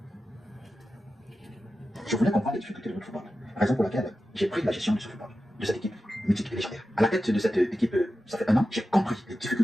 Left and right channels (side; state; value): both; normal; correlation 0.92